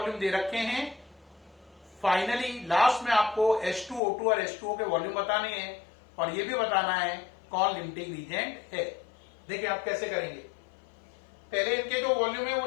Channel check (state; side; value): drops out; right; at 4.0 s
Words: दे रखे हैं, फाइनली लास्ट में आपको H2, O2 और H2O के वॉल्यूम बताने हैं और ये भी बताना है कौन लिमिटिंग रीजेंट है। देखिए आप कैसे करेंगे। पहले इनके जो वॉल्यूम है वो